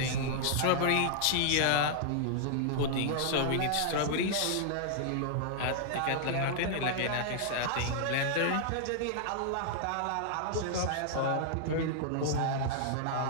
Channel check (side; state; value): both; different; correlation -0.01